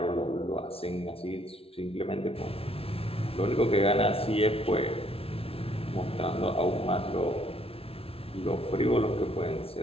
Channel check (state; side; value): late; right; 0.27 ms